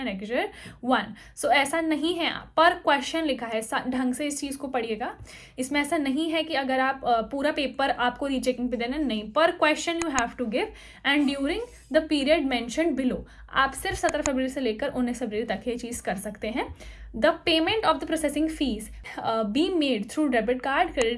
1। So ऐसा नहीं है, पर क्वेश्चन लिखा है, ढंग से इस चीज़ को पढ़िएगा। इसमें ऐसा नहीं है कि अगर आप पूरा पेपर आपको रीचेकिंग पे देना, नहीं, per question you have to give and during the period mentioned below. आप सिर्फ 17 फरवरी से लेकर 19 फरवरी तक ये चीज़ कर सकते हैं। The payment of the processing fee be made through debit card,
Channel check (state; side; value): identical; both; correlation 1.00